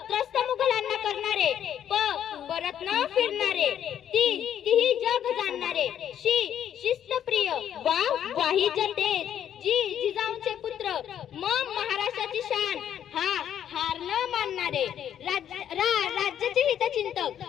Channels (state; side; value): quieter; right; 9.8 dB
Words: मुघलांना करणारे, परत न फिरणारे, तीही जग जाणणारे, शिस्तप्रिय, वाही जनतेज, जिजाऊंचे पुत्र, महाराष्ट्राची शान, हार न मानणारे, राज्याचे हितचिंतक,